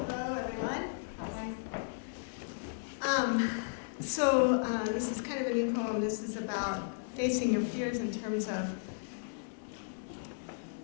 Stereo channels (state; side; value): silent; right; digital silence